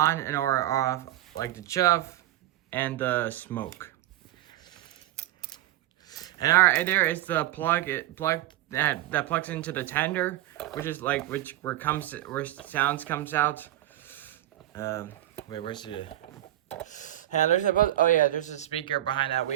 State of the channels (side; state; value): left; quieter; 14.2 dB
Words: and or off, like the chuff and the smoke. And alright, there is the plug that plugs into the tender, where sounds comes out. Wait, where's the? And there's a speaker behind that